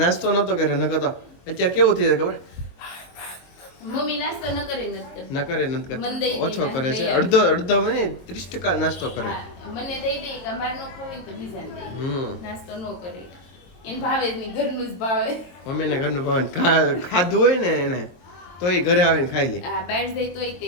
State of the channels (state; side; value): late; right; 22 ms